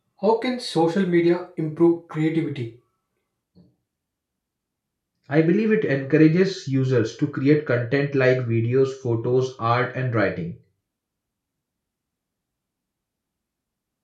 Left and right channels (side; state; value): both; identical; correlation 1.00